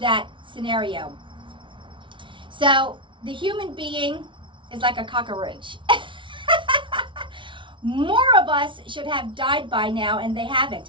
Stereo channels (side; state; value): left; late; 0.24 ms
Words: scenario. So the human being is like a cockroach. More of us should have died by now, and they